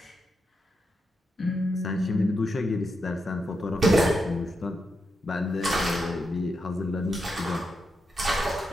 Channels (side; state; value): both; normal; correlation 0.85